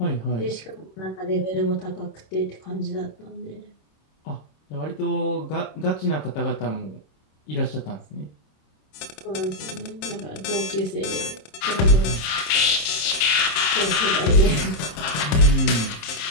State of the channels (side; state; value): right; late; 27 ms